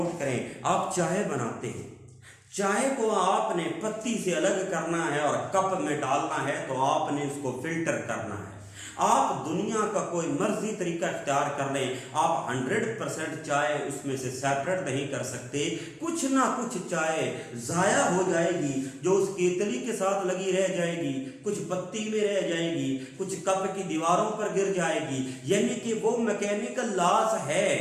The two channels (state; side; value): identical; both; correlation 1.00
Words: करें, आप चाय बनाते हैं, चाय को आपने पत्ती से अलग करना है और कप में डालना है, तो आपने उसको फिल्टर करना है। आप दुनिया का कोई मर्जी तरीका इख्तियार कर लें, आप 100% चाय उसमें से सेपरेट नहीं कर सकते। कुछ ना कुछ चाय जाया हो जाएगी, जो उस केतली के साथ लगी रह जाएगी, कुछ पत्ती में रह जाएगी, कुछ कप की दीवारों पर गिर जाएगी। यानी कि वो मैकेनिकल लॉस है,